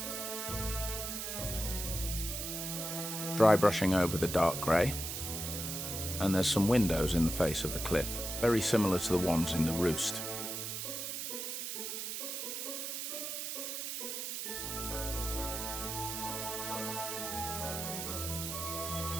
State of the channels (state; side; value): noise; right; hiss, 4 dB below the sound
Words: Dry brushing over the dark grey, and there's some windows in the face of the cliff, very similar to the ones in the roost.